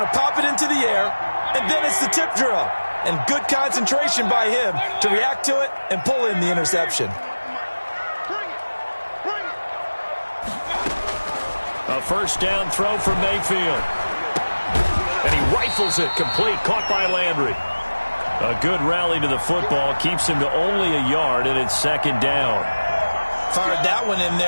to pop it into the air, and then it's the tip drill. And good concentration by him to react to it and pull in the interception. A first down throw from Mayfield. And he rifles it complete, caught by Landry. A good rally to the football, keeps him to only a yard, and it's second down. Fired that one in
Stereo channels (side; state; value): both; inverted; correlation -1.00